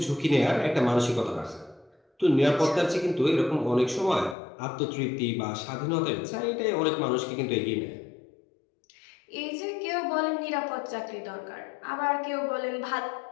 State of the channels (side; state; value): right; drops out; at 4.4 s